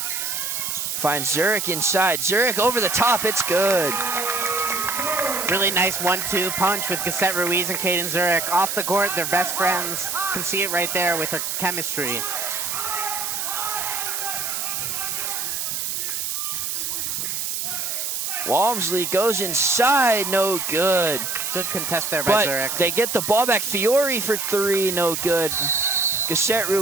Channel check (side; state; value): right; noise; hiss, 2 dB below the sound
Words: Finds Zurich inside. Zurich over the top, it's good. Really nice 1-2 punch with Cassette Ruiz and Caden Zurich. Off the court, they're best friends. Can see it right there with their chemistry. Walmsley goes inside, no good. Good contest there by Zurich. They get the ball back. Fiore for 3, no good. Cassette